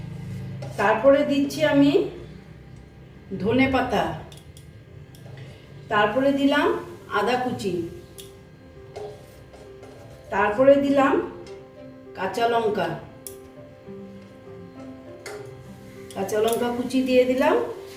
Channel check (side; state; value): both; identical; correlation 1.00